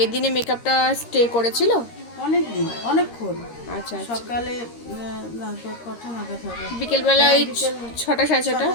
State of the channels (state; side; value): late; right; 13 ms